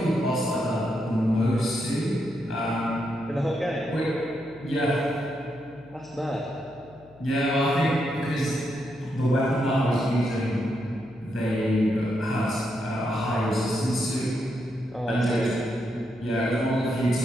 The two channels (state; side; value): noise; left; hum, 25 dB below the sound